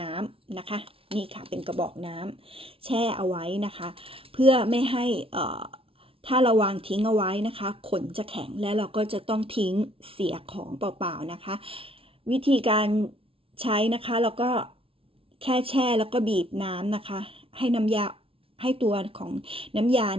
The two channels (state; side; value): late; left; 0.26 ms